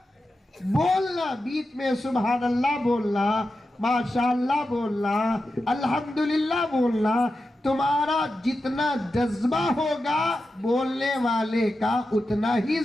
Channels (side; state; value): both; normal; correlation 0.90